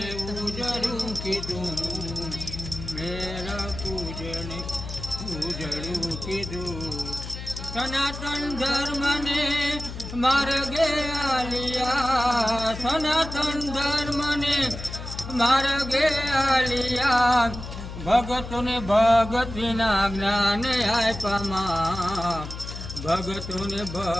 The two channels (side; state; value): left; noise; hum, 9 dB below the sound